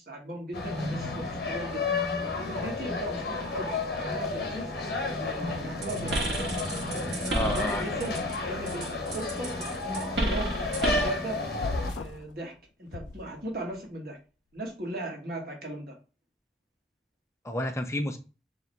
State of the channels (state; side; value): normal; both; correlation 0.38